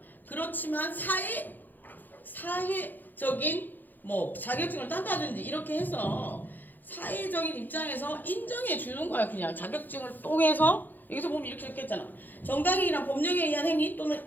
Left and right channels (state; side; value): late; right; 0.087 ms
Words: 그렇지만 사회적인 뭐 자격증을 딴다든지 이렇게 해서 사회적인 입장에서 인정해 주는 거야. 그냥 자격증을 통해서 여기서 보면 이렇게 했잖아. 정당행위란 법령에 의한 행위 또는